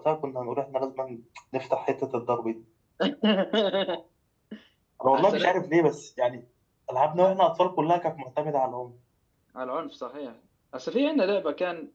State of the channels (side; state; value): both; identical; correlation 1.00